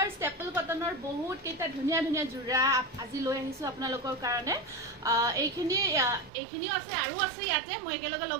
ষ্টেপল কটনৰ বহুত কেইটা ধুনীয়া ধুনীয়া জোৰা আজি লৈ আহিছো আপোনালোকৰ কাৰণে এইখিনিও আছে আৰু আছে ইয়াতে মই একেলগে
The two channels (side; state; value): left; drops out; at 6.3 s